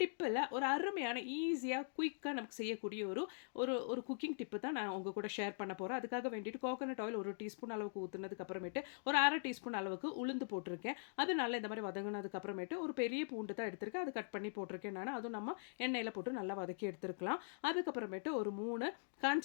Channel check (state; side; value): silent; right; digital silence